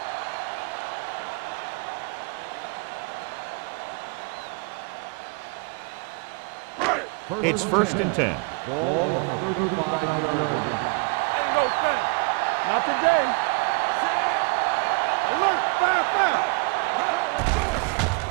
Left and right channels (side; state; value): left; quieter; 31.7 dB